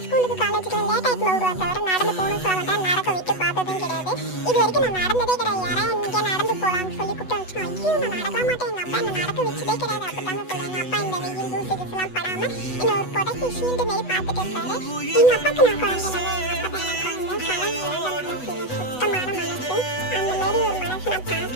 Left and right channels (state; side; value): late; right; 8.1 ms